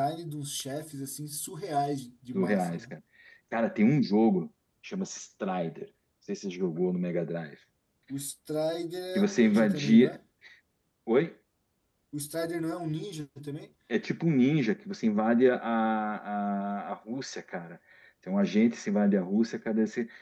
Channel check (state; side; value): identical; both; correlation 1.00